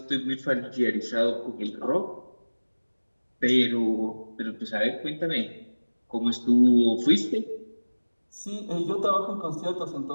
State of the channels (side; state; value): both; inverted; correlation -1.00